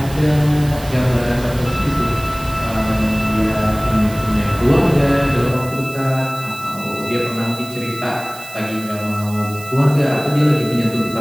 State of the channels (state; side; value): noise; right; hiss, 17 dB below the sound